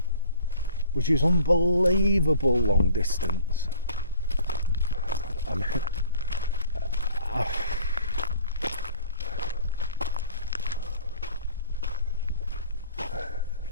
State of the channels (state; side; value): inverted; both; correlation -0.50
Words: which is unbelievable long distance. I